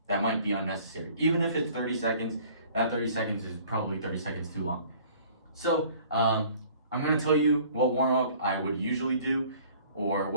might be unnecessary. Even if it's 30 seconds, that 30 seconds is probably 30 seconds too long. So I'm going to tell you what warm-up I would usually do, or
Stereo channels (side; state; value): both; inverted; correlation -0.52